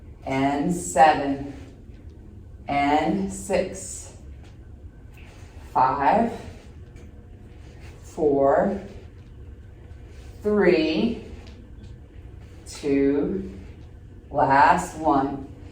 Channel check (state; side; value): identical; both; correlation 1.00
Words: And 7. And 6. 5. 4. 3. 2, last 1.